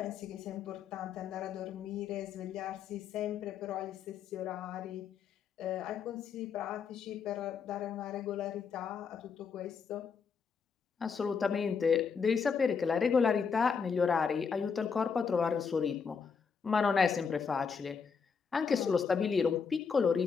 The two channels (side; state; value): right; quieter; 6.0 dB